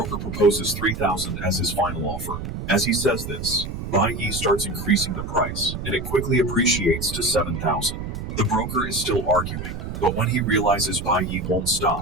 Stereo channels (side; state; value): right; noise; rumble, 6 dB below the sound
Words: proposes 3,000 as his final offer. As he says this, Bai Yi starts increasing the price, and it quickly appreciates to 7,000. The broker is still arguing, but when he realizes Bai Yi won't